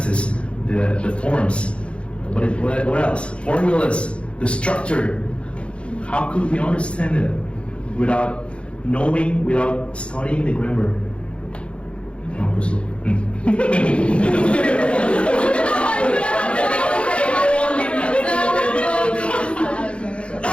the forms? What else? Formulas, the structure. How could we understand it without knowing, without studying the grammar?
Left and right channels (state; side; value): late; right; 0.059 ms